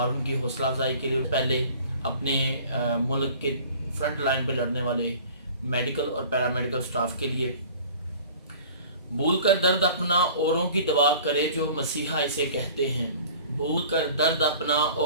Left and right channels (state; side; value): inverted; both; correlation -0.46